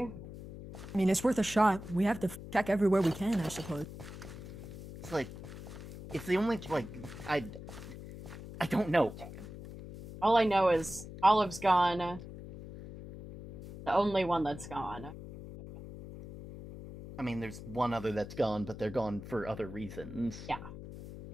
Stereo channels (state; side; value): noise; left; hum, 12 dB below the sound